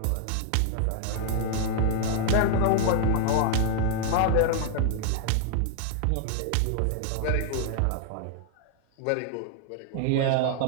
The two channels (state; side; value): different; both; correlation 0.00